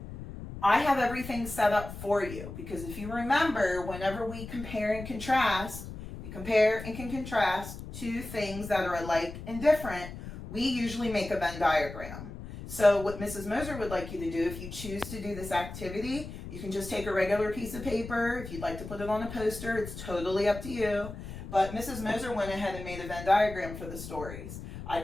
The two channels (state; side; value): noise; left; rumble, 11 dB below the sound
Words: I have everything set up for you, because if you remember, whenever we compare and contrast, we compare and can contrast 2 things that are alike and different, we usually make a Venn diagram. So what Mrs. Moser would like you to do, if you choose to do this activity, you can just take a regular piece of paper. If you'd like to put it on a poster, it's totally up to you. But Mrs. Moser went ahead and made a Venn diagram for the stories. I